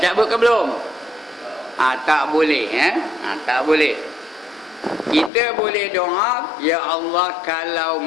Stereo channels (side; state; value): right; drops out; at 5.3 s